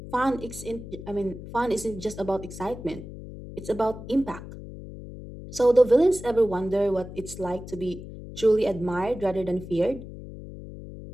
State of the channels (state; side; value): noise; left; hum, 12 dB below the sound